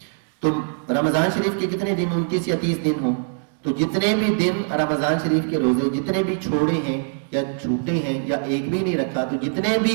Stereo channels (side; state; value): left; silent; digital silence